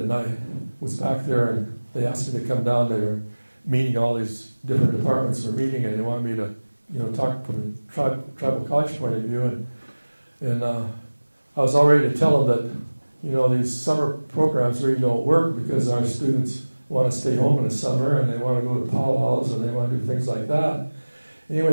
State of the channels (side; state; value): both; inverted; correlation -1.00